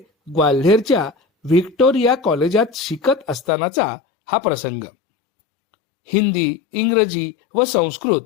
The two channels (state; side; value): drops out; right; at 3.5 s